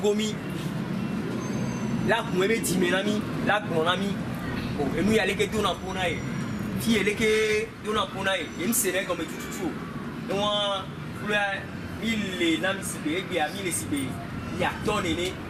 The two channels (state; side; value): identical; both; correlation 1.00